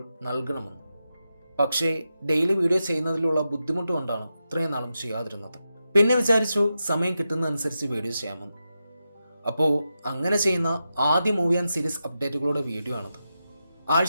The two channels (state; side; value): inverted; both; correlation -0.89